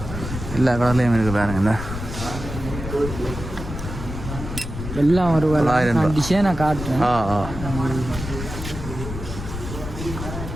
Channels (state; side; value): noise; left; rumble, 7 dB below the sound